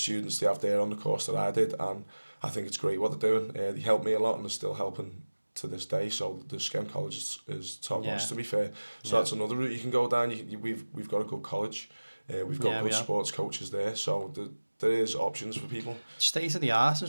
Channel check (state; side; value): inverted; both; correlation -1.00